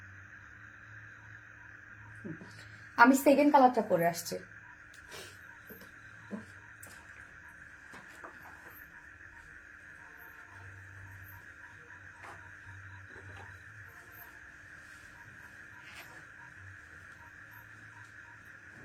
আমি সেকেন্ড কালারটা পরে আসছি।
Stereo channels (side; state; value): both; identical; correlation 1.00